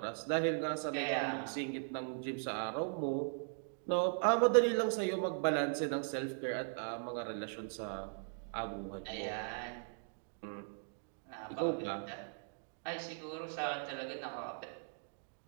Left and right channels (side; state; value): left; silent; digital silence